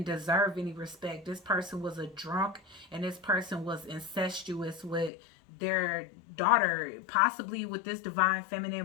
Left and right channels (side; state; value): right; drops out; at 5.1 s